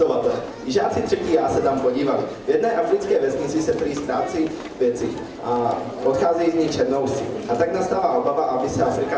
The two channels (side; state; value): both; identical; correlation 1.00